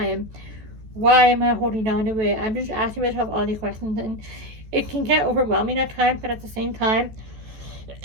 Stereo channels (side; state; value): left; late; 14 ms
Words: Why am I holding on to it? I'm just asking myself all these questions, and it can get overwhelming at times, but at the same time,